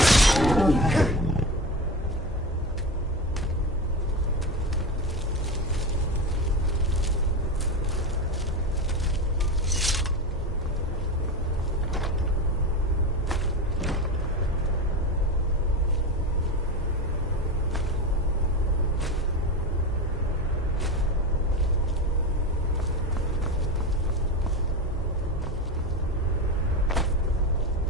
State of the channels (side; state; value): both; normal; correlation 0.23